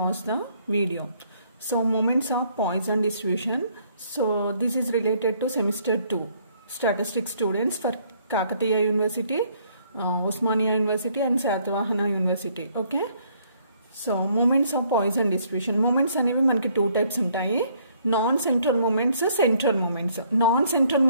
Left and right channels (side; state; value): both; inverted; correlation -0.66